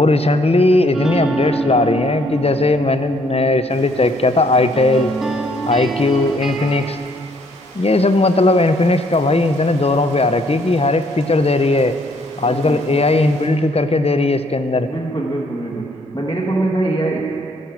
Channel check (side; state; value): both; normal; correlation 0.66